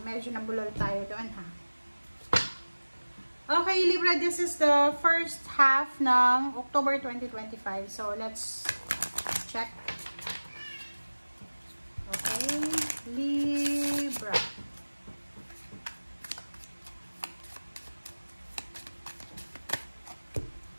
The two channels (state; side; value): inverted; both; correlation -1.00